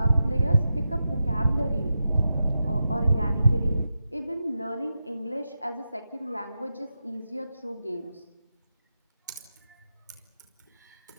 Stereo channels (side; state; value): both; inverted; correlation -0.89